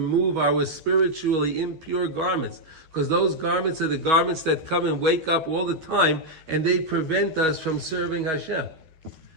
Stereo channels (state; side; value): late; left; 12 ms